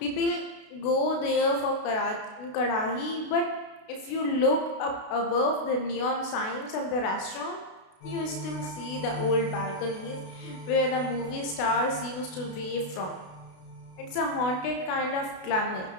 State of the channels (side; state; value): right; late; 32 ms